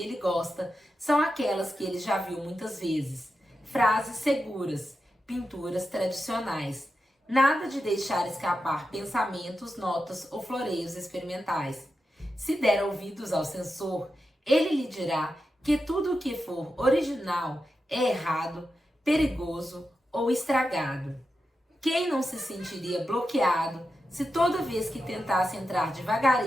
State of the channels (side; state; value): both; normal; correlation 0.89